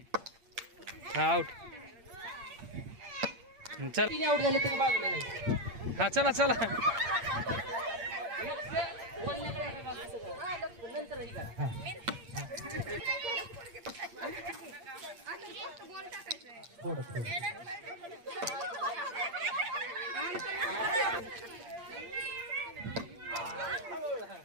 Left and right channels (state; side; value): late; left; 8.7 ms